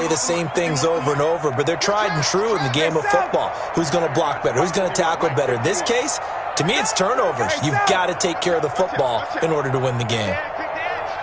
the same things over and over, but they're tried and true in the game of football. Who's going to block better? Who's going to tackle better? In this case, to me, it's turnovers. You've got to take care of the football in order to win the game.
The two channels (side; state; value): both; identical; correlation 1.00